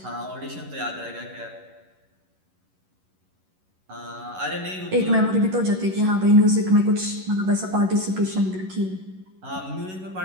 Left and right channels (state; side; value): late; left; 11 ms